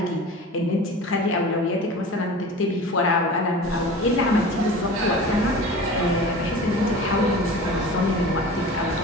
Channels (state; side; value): normal; both; correlation 0.36